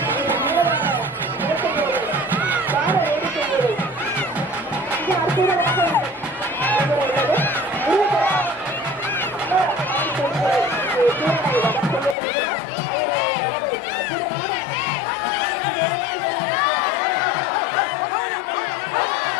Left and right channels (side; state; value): right; drops out; at 12.2 s